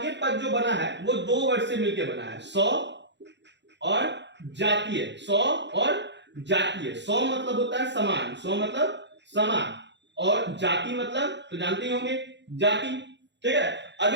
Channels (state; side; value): late; left; 0.52 ms